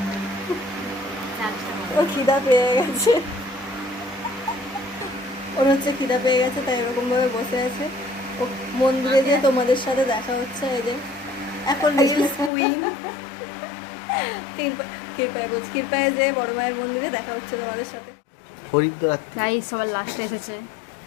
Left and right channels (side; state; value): right; drops out; at 12.5 s